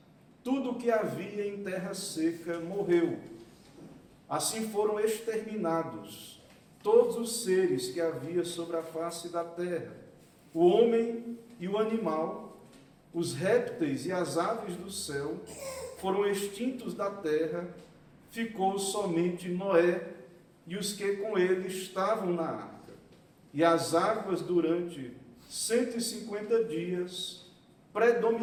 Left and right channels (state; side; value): identical; both; correlation 1.00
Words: tudo que havia em terra seca morreu. Assim foram exterminados todos os seres que havia sobre a face da terra, o homem e o animal, os répteis e as aves do céu, foram extintos da terra, ficou somente Noé e os que com ele estavam na arca. E as águas durante 150 dias